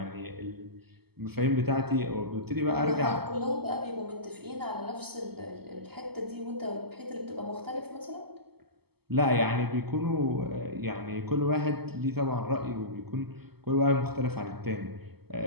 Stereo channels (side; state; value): left; late; 0.96 ms